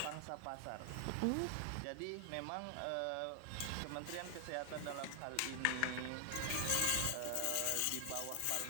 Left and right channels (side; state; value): both; different; correlation 0.00